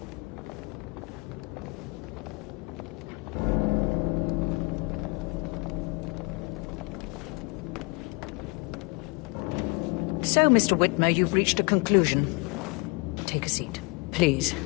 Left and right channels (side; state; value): right; quieter; 28.7 dB